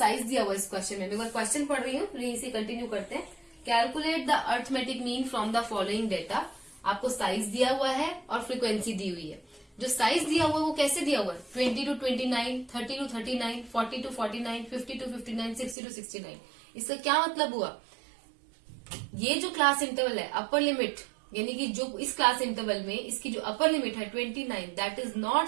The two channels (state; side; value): drops out; left; at 15.8 s